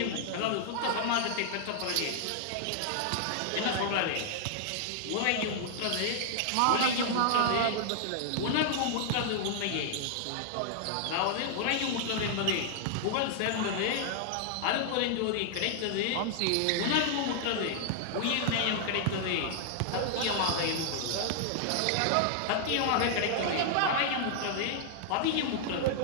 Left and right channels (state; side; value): different; both; correlation -0.01